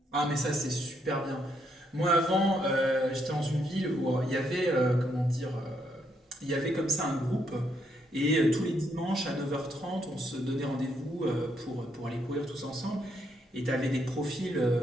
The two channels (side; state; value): both; normal; correlation 0.75